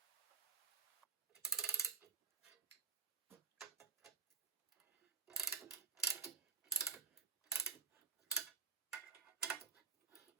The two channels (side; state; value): left; quieter; 6.0 dB